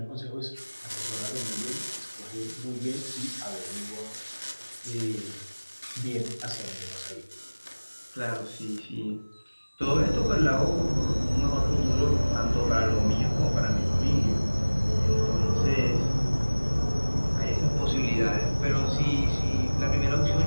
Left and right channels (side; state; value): both; inverted; correlation -1.00